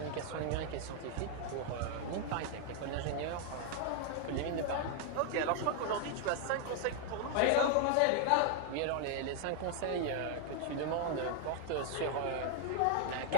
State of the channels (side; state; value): both; different; correlation 0.00